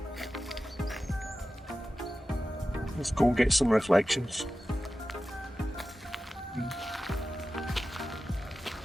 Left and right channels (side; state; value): both; normal; correlation 0.94